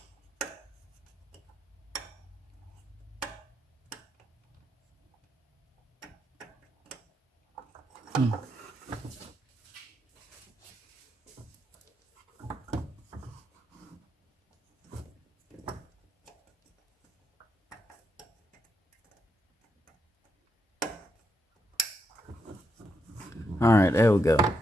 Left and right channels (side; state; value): both; normal; correlation 0.81